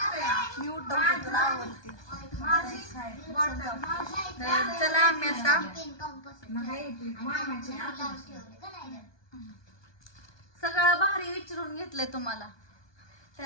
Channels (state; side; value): late; right; 1.2 ms